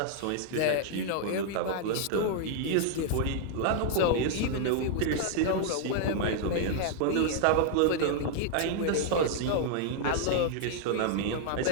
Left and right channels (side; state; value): both; different; correlation 0.00